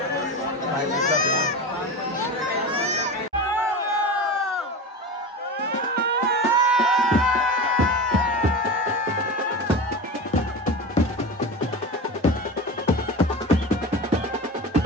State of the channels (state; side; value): normal; both; correlation 0.27